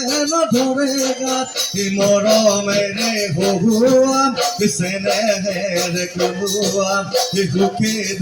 নধৰে গাত এই মৰমেৰে বহুৱাম চেনেহেৰে কোলোৱাম এই সুখে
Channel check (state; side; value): identical; both; correlation 1.00